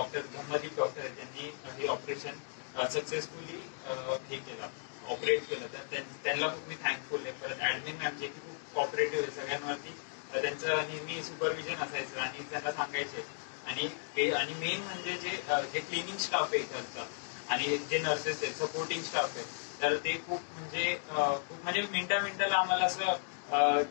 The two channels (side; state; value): right; silent; digital silence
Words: धम्मदीप डॉक्टर आहे त्यांनी हे ऑपरेशन सक्सेसफुली हे केलं ऑपरेट केलं तर त्यांना खूप मी थँकफुल आहे. परत ऍडमिन मॅम जे की खूप कॉपरेटिव्ह आहे सगळ्यांवरती त्यांचं नेहमी सुपरविजन असायचं आणि त्यांना सांगायचे आणि मेन म्हणजे जे क्लिनिंग स्टाफ आहे इकडचा आणि जे नर्सेस आहेत सपोर्टिंग स्टाफ आहे तर ते खूप म्हणजे मिनिटाला आम्हाला असं